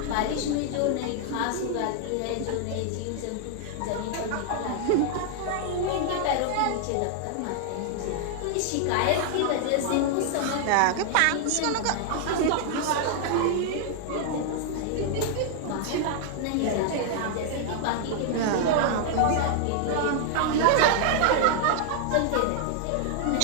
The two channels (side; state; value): both; different; correlation 0.00